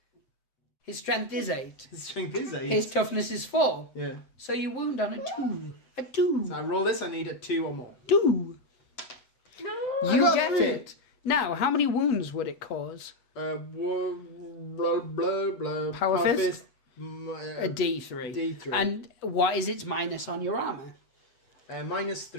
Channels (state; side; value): late; right; 8.0 ms